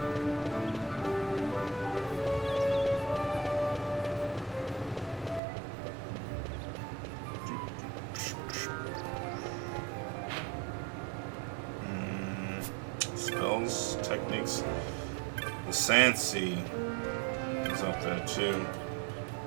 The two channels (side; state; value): left; drops out; at 5.4 s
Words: Spells, techniques. The Sand Sea is up there too.